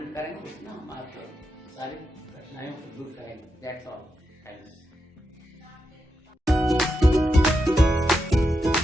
करेंगे, उसमें हम आपको सारी कठिनाइयों को दूर करेंगे। That's all, thanks.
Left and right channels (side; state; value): both; normal; correlation 0.86